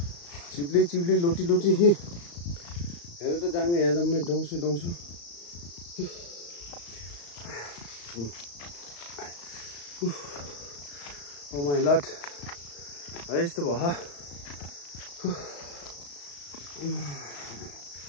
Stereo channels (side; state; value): right; late; 35 ms